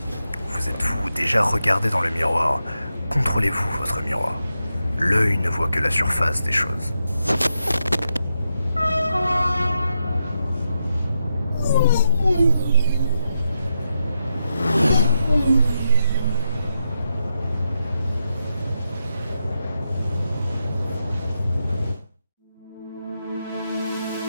Vous êtes-vous déjà regardé dans le miroir? Contrôlez-vous votre miroir. L'œil ne voit que la surface des choses.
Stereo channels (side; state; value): both; inverted; correlation -0.86